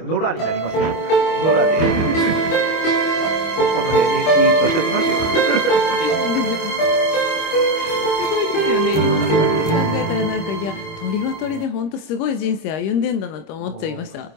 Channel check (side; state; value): right; late; 25 ms